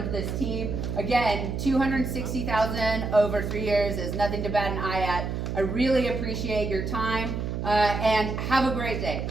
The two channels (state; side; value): noise; right; hum, 3 dB below the sound